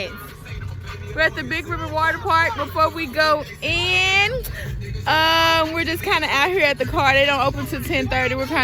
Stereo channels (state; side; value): identical; both; correlation 1.00